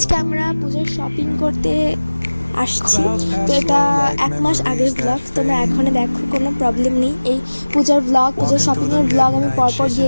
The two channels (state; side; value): inverted; both; correlation -1.00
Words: আমরা পূজার শপিং করতে আসছি। তো এটা 1 মাস আগের ব্লগ, তোমরা এখনই দেখো, কোনো প্রবলেম নেই। এই পূজার ব্লগ, পূজার শপিংয়ের ব্লগ আমি পরপর দিয়ে